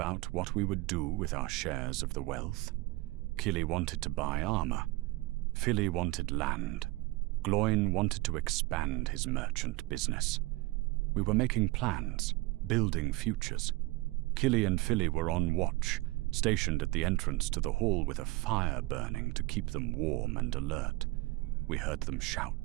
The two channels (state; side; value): quieter; left; 22.3 dB